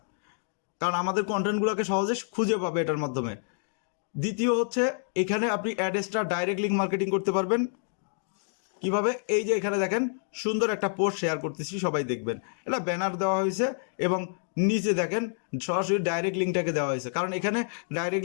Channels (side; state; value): right; silent; digital silence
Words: কারণ আমাদের কন্টেন্টগুলোকে সহজে খুঁজে পাবে এটার মাধ্যমে। দ্বিতীয় হচ্ছে এখানে আপনি অ্যাডেসটা ডাইরেক্ট লিঙ্ক মার্কেটিং করতে পারবেন। কীভাবে, এই যে এখানে দেখেন সুন্দর একটা পোস্ট শেয়ার করতেছি, সবাই দেখবেন। এটা ব্যানার দেওয়া হয়েছে এবং নিচে দেখেন সরাসরি ডাইরেক্ট লিঙ্কটাকে দেওয়া হয়েছে, কারণ এখানে ডাইরেক্ট